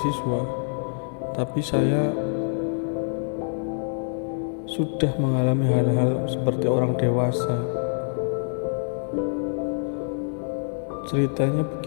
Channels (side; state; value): right; silent; digital silence